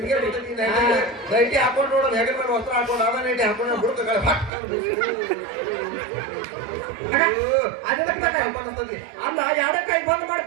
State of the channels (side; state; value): left; drops out; at 4.5 s